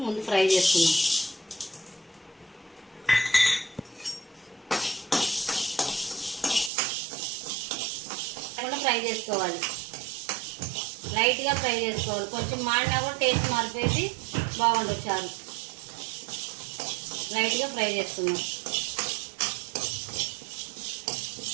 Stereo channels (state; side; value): drops out; left; at 6.7 s